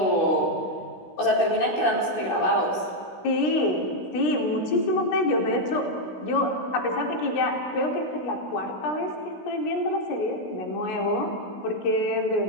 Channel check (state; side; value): late; right; 16 ms